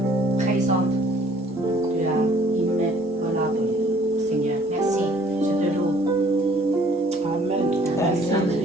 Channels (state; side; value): normal; both; correlation 0.57